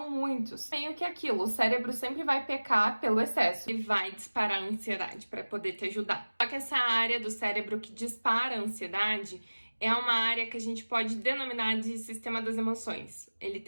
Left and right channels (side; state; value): both; inverted; correlation -1.00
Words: muitos. Meio que aquilo, o cérebro sempre vai pecar pelo excesso e vai disparar a ansiedade para poder te ajudar. Só que essa área do cérebro que dispara a ansiedade é uma área que a gente pode denominar de sistema das emoções. Ele